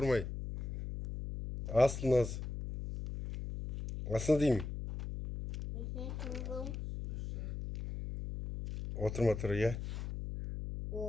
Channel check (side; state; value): left; noise; hum, 6 dB below the sound